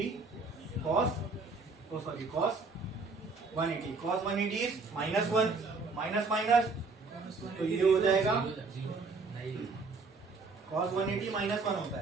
cos 180. cos 180 is -1, minus minus, तो ये हो जाएगा cos 180 -1 होता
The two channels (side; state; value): left; quieter; 4.1 dB